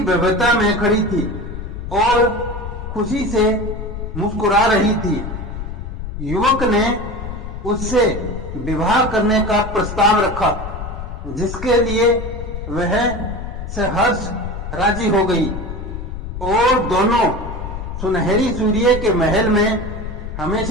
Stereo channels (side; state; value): left; noise; rumble, 7 dB below the sound